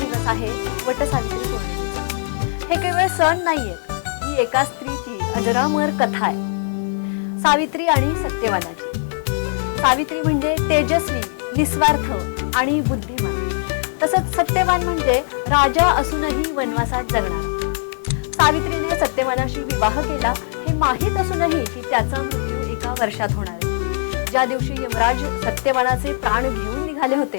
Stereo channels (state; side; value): silent; right; 65 dB below the other